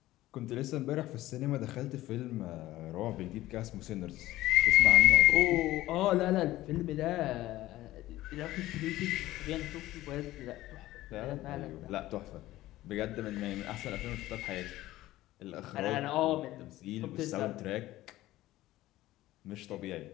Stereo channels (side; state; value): right; quieter; 16.1 dB